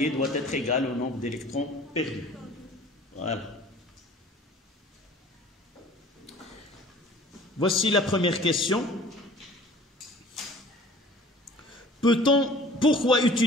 doit être égal au nombre d'électrons perdus. Voilà. Voici la première question. Pourquoi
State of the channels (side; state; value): both; normal; correlation 0.48